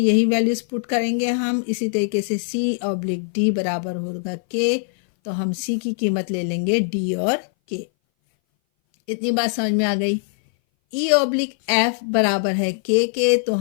वैल्यूज पुट करेंगे हम। इसी तरीके से c ऑब्लिक d बराबर होगा k, तो हम c की कीमत ले लेंगे d और k। इतनी बात समझ में आ गई। e ऑब्लिक f बराबर है k के, तो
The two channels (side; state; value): right; silent; 59 dB below the other